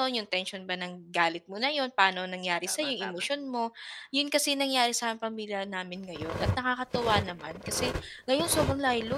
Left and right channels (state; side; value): identical; both; correlation 1.00